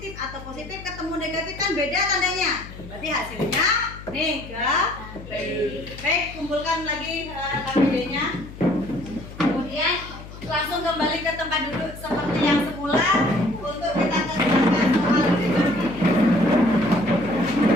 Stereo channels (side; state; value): left; noise; hum, 15 dB below the sound